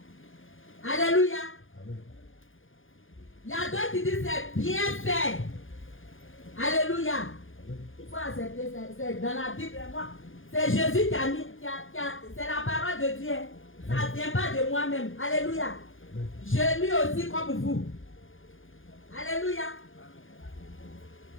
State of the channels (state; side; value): late; right; 0.58 ms